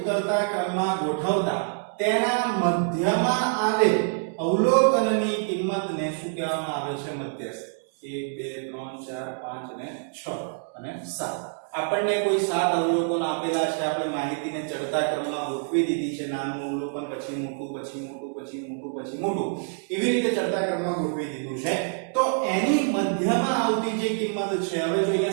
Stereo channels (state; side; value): silent; left; 61 dB below the other